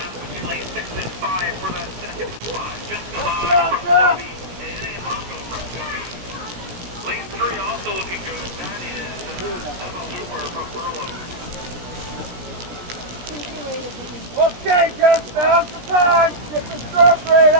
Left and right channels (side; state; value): left; late; 17 ms